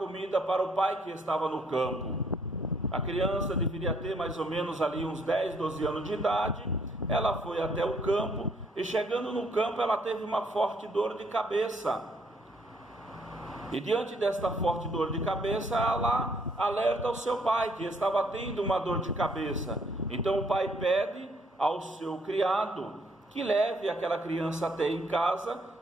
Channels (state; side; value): normal; both; correlation 0.67